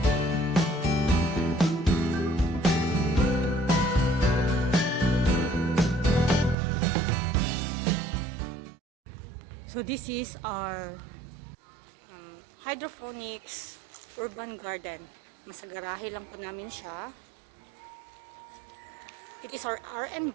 So this is our hydroponics urban garden. Nasa garahe lang po namin siya. It is our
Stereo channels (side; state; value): left; drops out; at 6.6 s